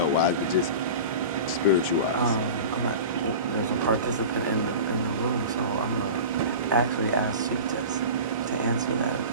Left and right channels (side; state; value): both; inverted; correlation -0.33